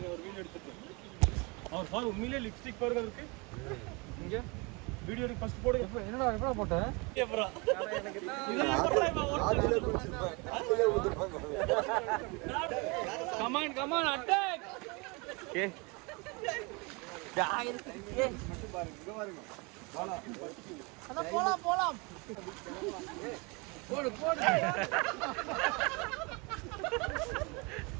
ஒரு வீடியோ எடுத்துட்டு அவர் சார் உண்மையிலேயே லிப்ஸ்டிக் பாருங்க இருக்கு இங்க வீடியோ எடுத்து ஃபர்ஸ்ட் போடுங்க. என்னடா எப்படா போட்டேன்? Come on attack. ஓகே போலாம் போடு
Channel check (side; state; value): left; quieter; 29.0 dB